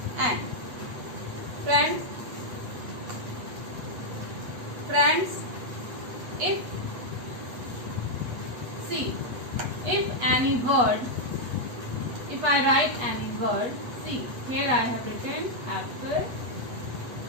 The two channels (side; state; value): left; late; 8.3 ms